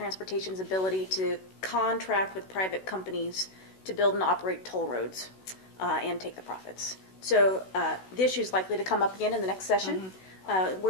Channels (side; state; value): right; late; 16 ms